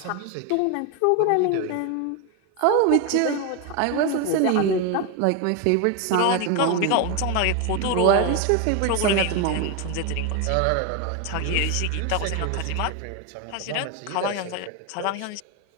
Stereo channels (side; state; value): both; different; correlation 0.02